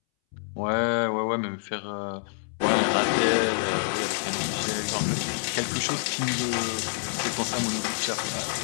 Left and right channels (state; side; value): silent; right; 60 dB below the other